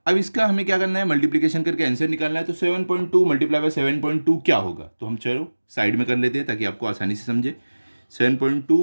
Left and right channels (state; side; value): inverted; both; correlation -1.00